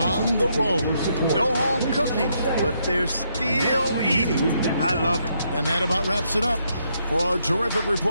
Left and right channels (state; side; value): inverted; both; correlation -0.76